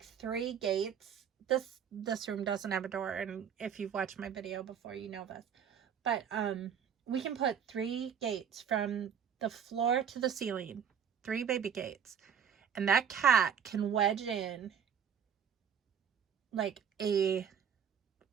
3 gates. This room doesn't have a door, and if you've watched my video before, you know this. But we can put 3 gates from the floor to the ceiling, 3 baby gates, and that cat can wedge in like a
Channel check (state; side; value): quieter; left; 8.0 dB